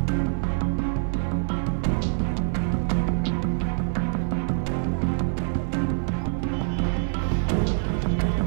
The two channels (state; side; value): silent; left; 62 dB below the other